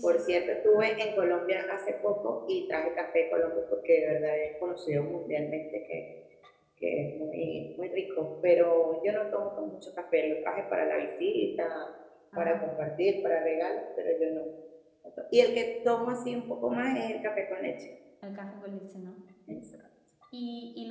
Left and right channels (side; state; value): both; identical; correlation 1.00